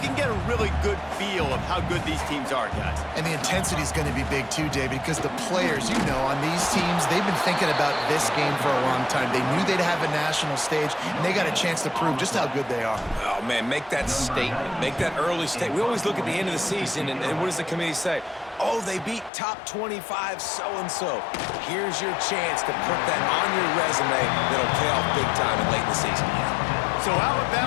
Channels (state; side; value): drops out; right; at 19.3 s